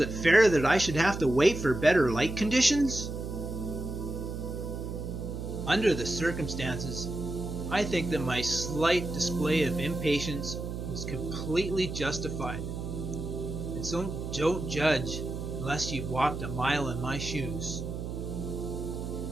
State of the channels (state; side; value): noise; right; hum, 6 dB below the sound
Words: fair that I should have to wait for better light conditions? Under the circumstances, I think that my slight display of impatience was completely justified. And so don't judge unless you've walked a mile in my shoes.